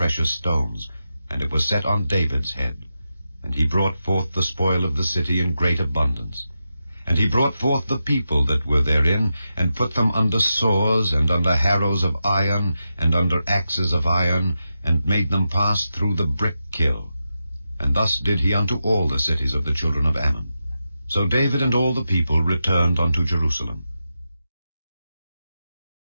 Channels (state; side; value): inverted; both; correlation -0.89